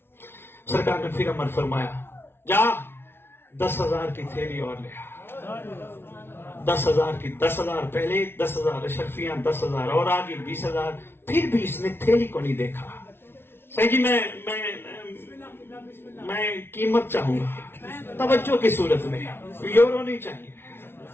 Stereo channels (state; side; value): late; right; 0.11 ms